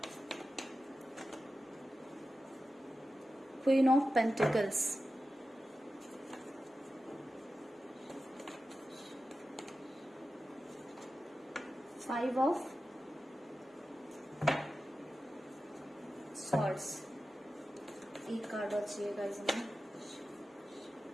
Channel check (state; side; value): normal; both; correlation 0.93